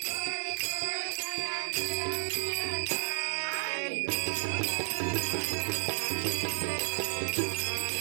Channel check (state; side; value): silent; left; digital silence